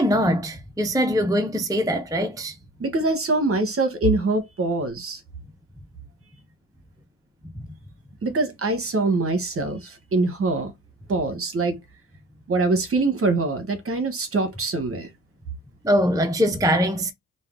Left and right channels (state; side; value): normal; both; correlation 0.46